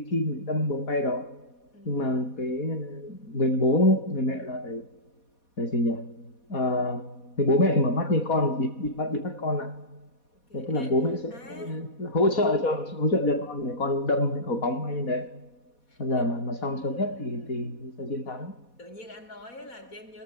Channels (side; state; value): right; late; 4.2 ms